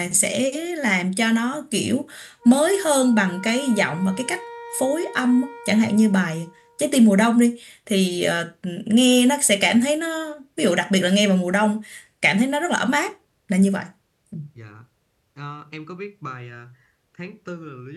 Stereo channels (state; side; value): identical; both; correlation 1.00